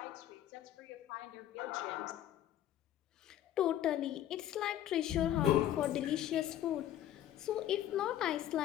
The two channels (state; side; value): quieter; right; 12.0 dB